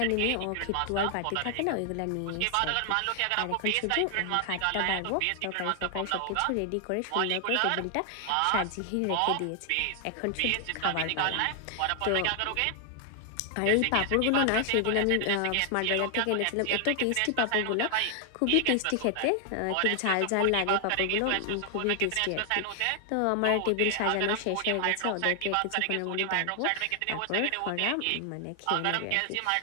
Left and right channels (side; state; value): both; different; correlation 0.00